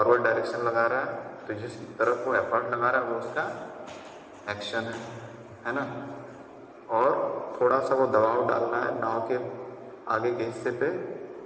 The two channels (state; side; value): identical; both; correlation 1.00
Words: डायरेक्शन लगा रहा है। तो जिस तरफ वो एफर्ट लगा रहा है वो उसका एक्शन है ना। और थोड़ा सा वो दबाव डालना है नाव के आगे के हिस्से पे